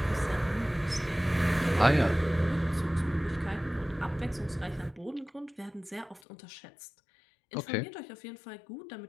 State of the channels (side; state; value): right; drops out; at 6.2 s